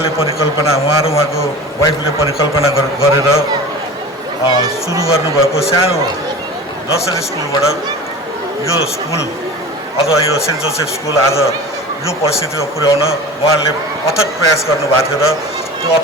परिकल्पना र उहाँको वाइफले परिकल्पना गरेर सुरु गर्नुभएको सानो नर्सरी स्कुलबाट यो स्कुल अथवा यो सेन्ट जोसेफ स्कुल आज यो परिस्थितिमा पुर्याउन उहाँले अथक प्रयास गर्नुभएको थियो र त्यो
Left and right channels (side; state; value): both; normal; correlation 0.36